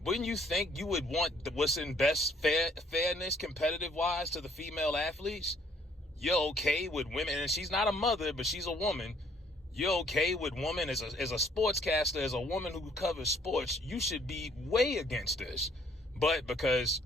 Wouldn't you think you would want what's in best fairness, competitive-wise, to the female athletes? You're okay with women, and she's not a mother, but she's a woman. You're okay with women as a sportscaster, as a woman who covers sports. You should be way against this. But because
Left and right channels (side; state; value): both; normal; correlation 0.63